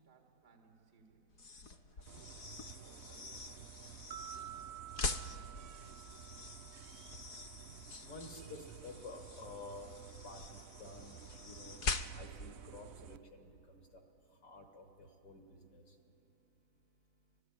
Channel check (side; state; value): right; late; 4.8 ms